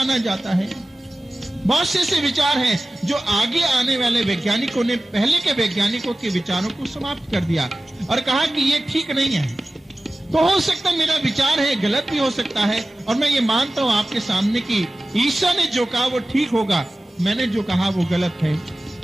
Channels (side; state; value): both; normal; correlation 0.96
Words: जाता है। बहुत से ऐसे विचार हैं जो आगे आने वाले वैज्ञानिकों ने पहले के वैज्ञानिकों के विचारों को समाप्त कर दिया और कहा कि ये ठीक नहीं है। तो हो सकता है मेरा विचार है गलत भी हो सकता है, और मैं ये मानता हूं आपके सामने कि ईसा ने जो कहा वो ठीक होगा, मैंने जो कहा वो गलत है।